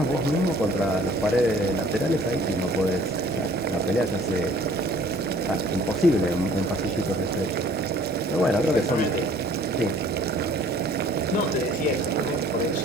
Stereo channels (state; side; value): normal; both; correlation 0.54